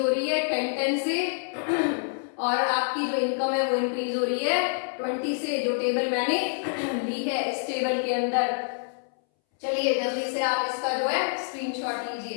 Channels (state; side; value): silent; right; 60 dB below the other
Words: हो रही है 10 से और आपकी जो income है वो increase हो रही है 20 से. जो टेबल मैंने ली है इस टेबल के अंदर. चलिए जल्दी से आप इसका जो है स्क्रीनशॉट लीजिए,